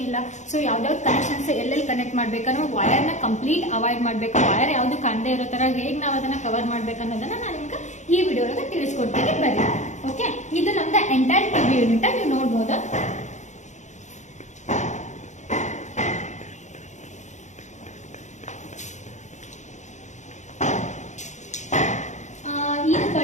ಸೊ ಯಾವ್ದಾವ್ದು ಕನೆಕ್ಷನ್ಸ್ ಎಲ್ಲೆಲ್ಲಿ ಕನೆಕ್ಟ್ ಮಾಡ್ಬೇಕನ್ನೋ ವೈರ್ ನ ಕಂಪ್ಲೀಟ್ ಅವಾಯ್ಡ್ ಮಾಡ್ಬೇಕು. ವೈರ್ ಯಾವ್ದು ಕಾಣದೇ ಇರೋ ತರ ಹೇಗ್ ನಾವ್ ಅದನ್ನ ಕವರ್ ಮಾಡ್ಬೇಕು ಅನ್ನೋದನ್ನ ನಾನು ನಿಮ್ಗೆ ಈ ವಿಡಿಯೋ ಒಳಗೆ ತಿಳಿಸ್ಕೊಡ್ತೀನಿ. ಬರ್ರಿ. ಓಕೆ, ಇದು ನಮ್ದ ಎಂಟೈರ್ ಟಿವಿ ಯೂನಿಟ್ ನೀವು ನೋಡ್ಬೋದು. ಇದು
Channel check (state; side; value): late; right; 0.34 ms